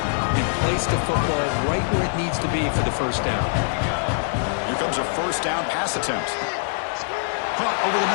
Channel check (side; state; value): right; silent; digital silence